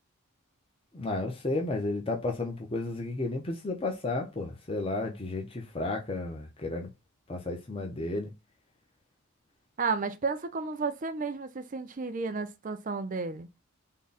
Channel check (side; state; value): both; normal; correlation 0.29